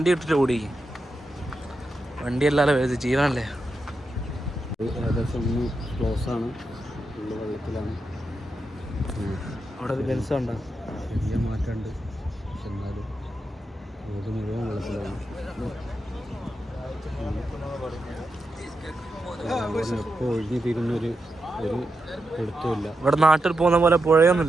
ഇട്ടിട്ട് ഓടിക്കും. വണ്ടി അല്ലാതെ ജീവനല്ലേ. ഏകദേശം ഒന്ന് ക്ലോസ് ആണ്, ഉള്ള വെള്ളത്തിലാണ്. അവിടെ ഒരു ബെൻസ് ഉണ്ടോ? ചെറിയ മാറ്റമുണ്ട്, പക്ഷെ എന്നാലും റോഡ് മുഴുവൻ വെള്ളത്തിലാണ്. എപ്പോൾ ഒഴിഞ്ഞു തീരുന്നൊരു എടുത്തുമില്ല. ഇവിടെ നാട്ടിൽ പോകുന്ന പോലെ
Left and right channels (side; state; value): both; normal; correlation 0.87